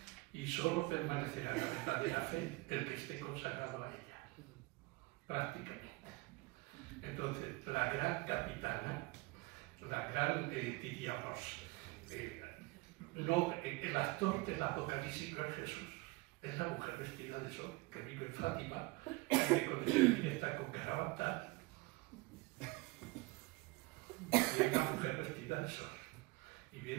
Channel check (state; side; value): quieter; left; 23.4 dB